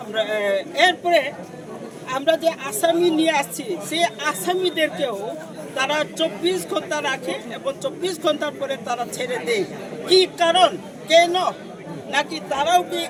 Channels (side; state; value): both; identical; correlation 1.00